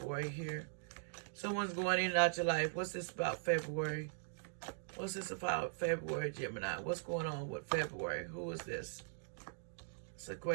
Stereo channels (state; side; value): silent; left; digital silence